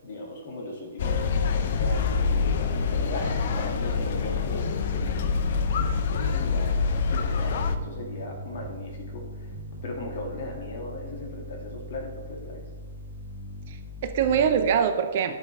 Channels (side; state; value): both; inverted; correlation -0.47